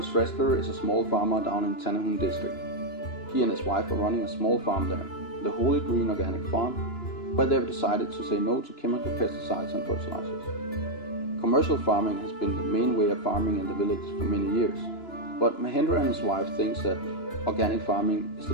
Shrestha is a small farmer down in Tanahun district. He and his wife are running a small farm there, the Holy Green Organic Farm, where they have decided to say no to chemical pesticides and fertilizers. Commercial farming has been the main way of farming in the village for many years, but Mahendra and his wife thinks that organic farming is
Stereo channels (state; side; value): late; right; 2.9 ms